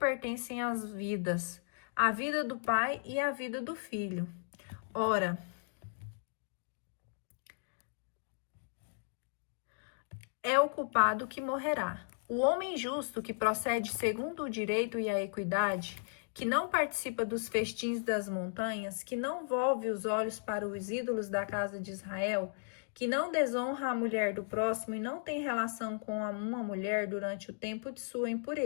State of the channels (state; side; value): silent; right; digital silence